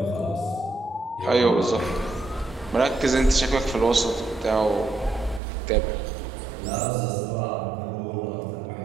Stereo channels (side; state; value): left; drops out; at 5.4 s